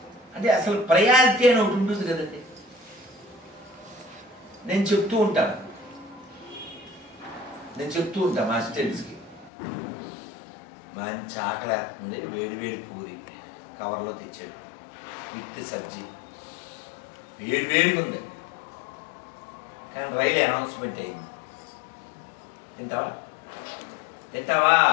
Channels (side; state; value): right; drops out; at 9.5 s